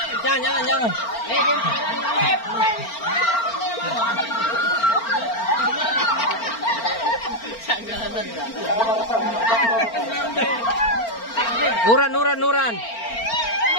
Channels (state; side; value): late; right; 4.4 ms